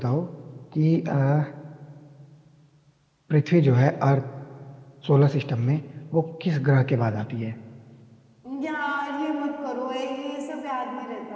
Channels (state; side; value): identical; both; correlation 1.00